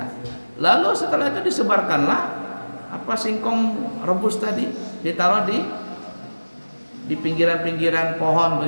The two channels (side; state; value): both; inverted; correlation -1.00